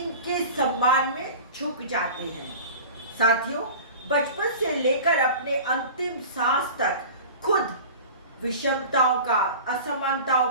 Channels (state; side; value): inverted; both; correlation -0.37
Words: सम्मान में झुक जाते हैं। साथियों, बचपन से लेकर अपने अंतिम सांस तक खुद विषमताओं का, असमानताओं